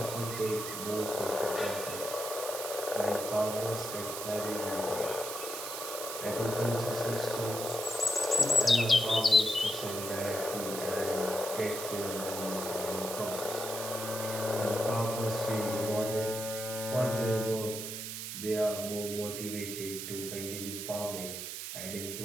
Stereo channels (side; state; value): right; noise; hiss, 6 dB below the sound